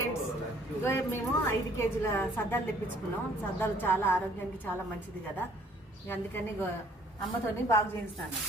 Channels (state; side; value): normal; both; correlation 0.59